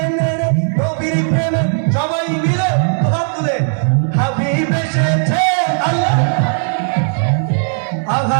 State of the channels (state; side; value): silent; left; 69 dB below the other